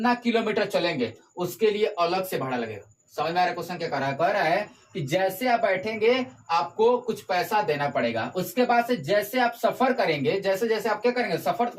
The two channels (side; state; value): both; identical; correlation 1.00